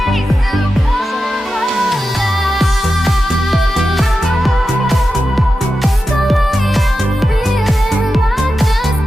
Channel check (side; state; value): both; normal; correlation 0.91